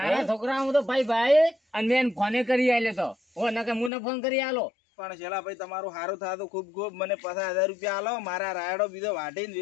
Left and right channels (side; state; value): right; drops out; at 3.9 s